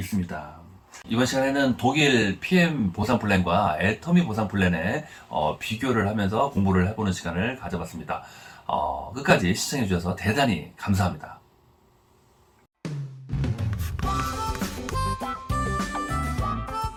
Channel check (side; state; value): both; identical; correlation 1.00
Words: 이번 시간에는 독일 PM 보상 플랜과 애터미 보상 플랜의 비교를 하면서 공부를 해보는 시간을 가져봤습니다. 끝까지 시청해주셔서 대단히 감사합니다.